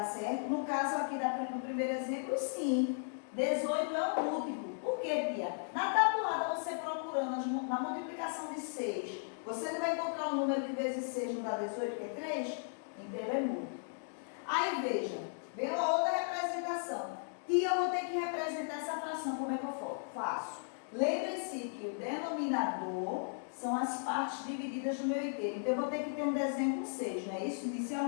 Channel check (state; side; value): silent; right; digital silence